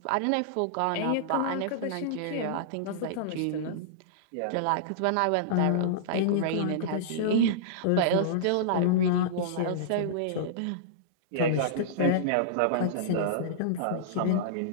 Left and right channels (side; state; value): both; different; correlation -0.03